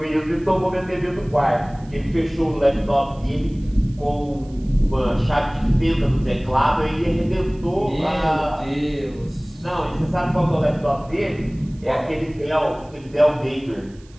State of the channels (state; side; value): noise; right; hiss, 29 dB below the sound